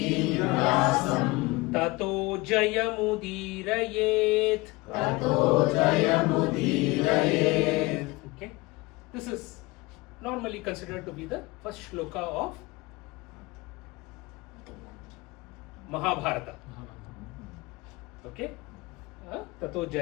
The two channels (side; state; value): right; quieter; 22.6 dB